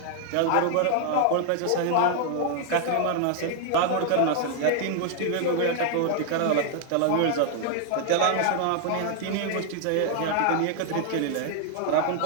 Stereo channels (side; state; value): both; different; correlation 0.00